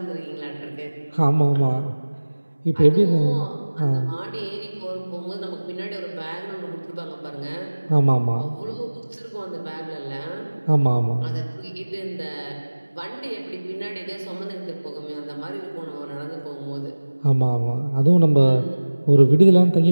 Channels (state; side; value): inverted; both; correlation -1.00